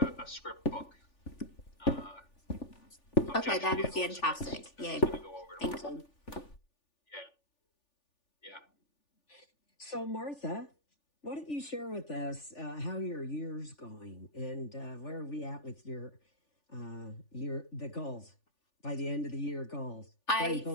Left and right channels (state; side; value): late; right; 3.4 ms